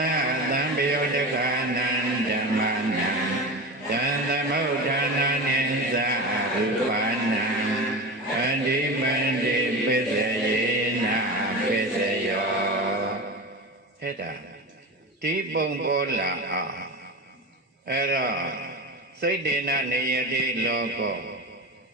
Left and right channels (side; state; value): both; normal; correlation 0.26